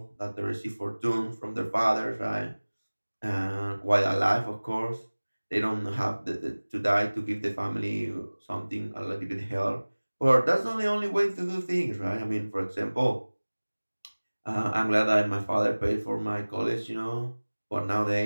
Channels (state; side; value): inverted; both; correlation -1.00